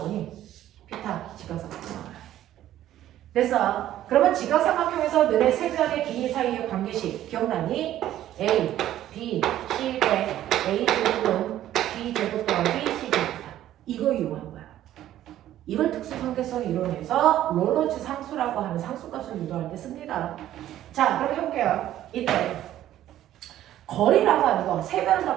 피타, 직각삼각형 나와요. 됐어. 그러면 직각삼각형에서 너네 세 변의 길이 사이의 관계식 기억나니? A, B, C 대 A 제곱은 B 제곱 더하기 C 제곱이다. 이거 이용하는 거야. 이걸 특수관계성 이론에서 로런츠 상수라고 하는 상수값을 유도할 때 씁니다. 자, 그럼 해볼게요. 이때 거리라고 하는 거, 세 변을 다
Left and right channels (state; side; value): quieter; left; 12.7 dB